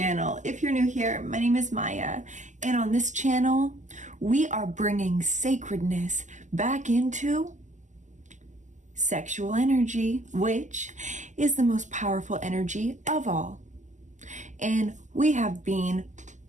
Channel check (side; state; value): left; late; 0.35 ms